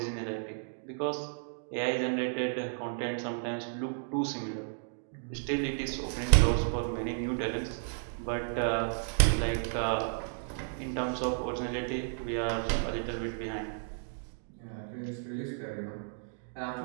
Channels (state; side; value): silent; left; digital silence